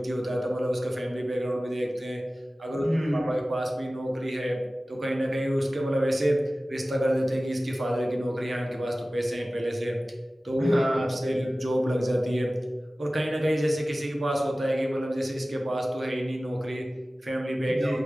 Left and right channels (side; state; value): both; normal; correlation 0.97